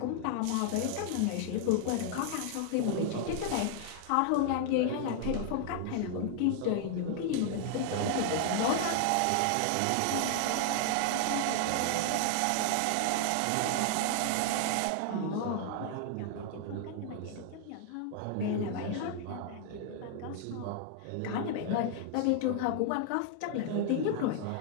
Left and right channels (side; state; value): both; different; correlation 0.00